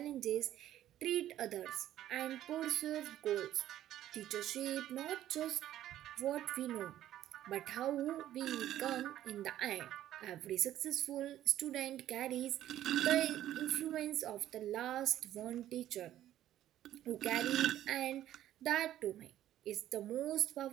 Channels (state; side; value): quieter; left; 12.6 dB